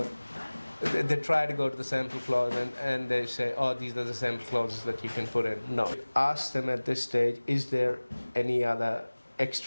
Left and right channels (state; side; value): inverted; both; correlation -1.00